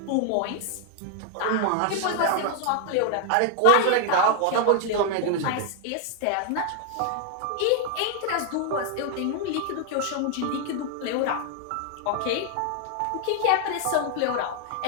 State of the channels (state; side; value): different; both; correlation 0.00